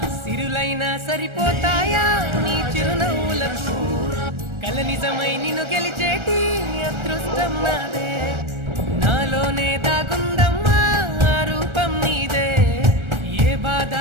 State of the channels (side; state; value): left; late; 1.3 ms